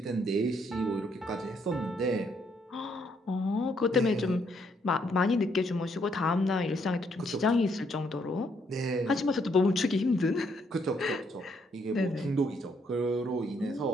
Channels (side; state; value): both; normal; correlation 0.72